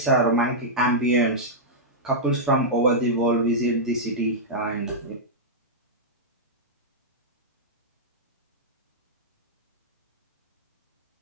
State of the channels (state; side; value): normal; both; correlation -0.09